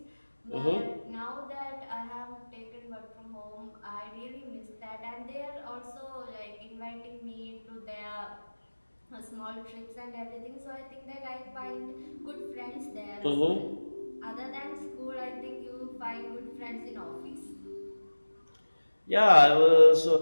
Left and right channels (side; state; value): both; inverted; correlation -1.00